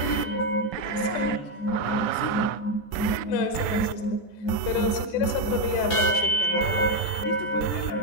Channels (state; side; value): late; right; 14 ms